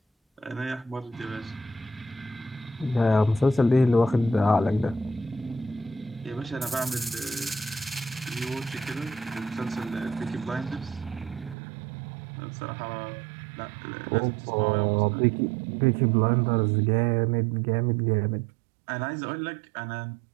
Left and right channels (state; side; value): drops out; left; at 11.6 s